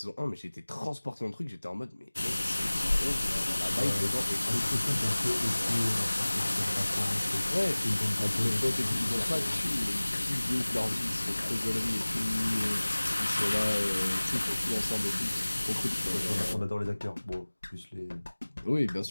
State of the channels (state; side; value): inverted; both; correlation -1.00